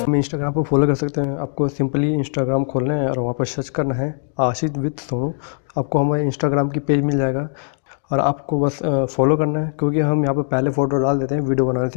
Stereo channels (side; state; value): right; silent; digital silence